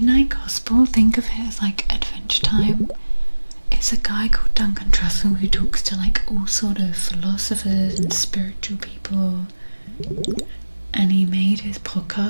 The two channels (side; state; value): both; inverted; correlation -1.00